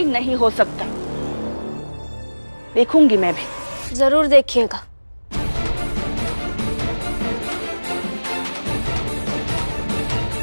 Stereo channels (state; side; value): inverted; both; correlation -1.00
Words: नहीं हो सकता। देखूंगी मैं भी। जरूर देखिएगा।